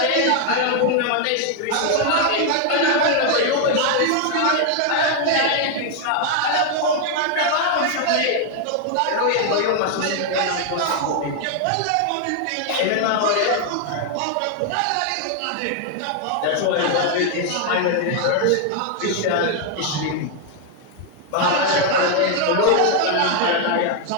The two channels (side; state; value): both; different; correlation 0.00